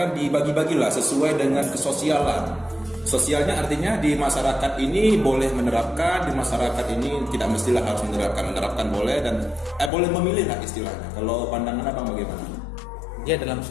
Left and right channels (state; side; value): drops out; right; at 9.9 s